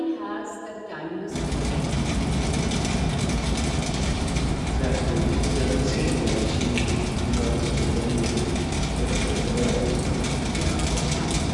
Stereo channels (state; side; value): identical; both; correlation 1.00